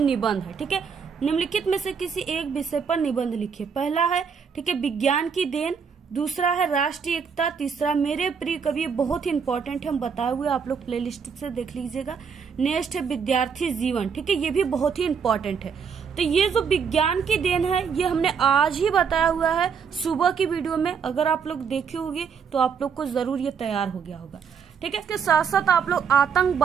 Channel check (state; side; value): quieter; left; 6.5 dB